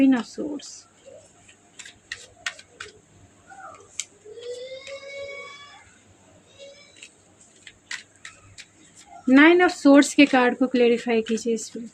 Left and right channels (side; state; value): both; identical; correlation 1.00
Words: of swords, nine of swords के कार्ड को क्लेरिफाई कीजिए